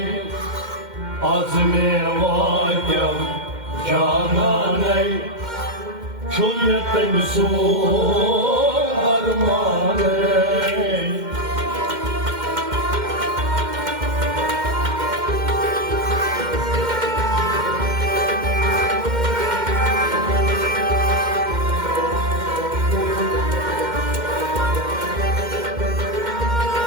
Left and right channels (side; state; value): left; late; 2.1 ms